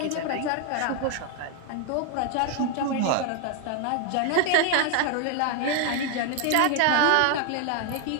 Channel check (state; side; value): different; both; correlation 0.00